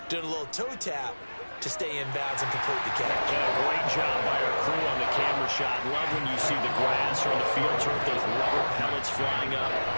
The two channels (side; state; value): both; inverted; correlation -1.00